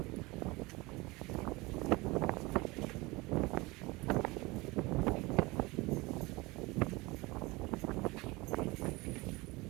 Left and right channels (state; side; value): quieter; left; 23.1 dB